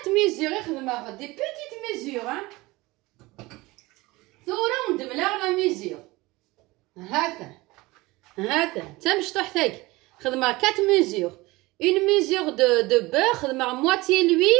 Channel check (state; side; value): quieter; left; 21.4 dB